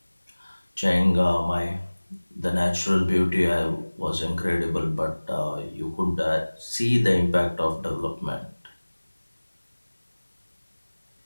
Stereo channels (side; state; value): both; inverted; correlation -1.00